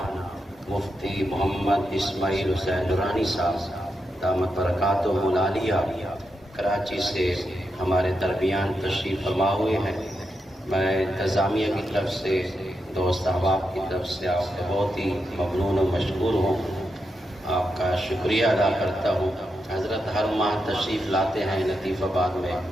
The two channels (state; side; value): normal; both; correlation 0.86